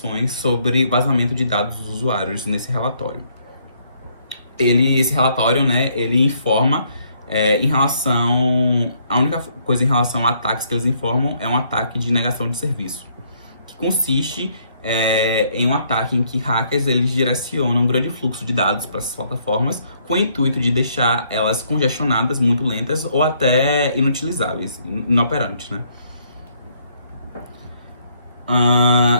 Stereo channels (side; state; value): both; inverted; correlation -0.69